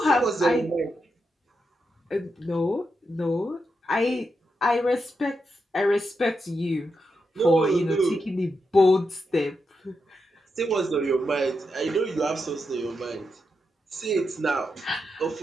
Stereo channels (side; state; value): both; normal; correlation 0.85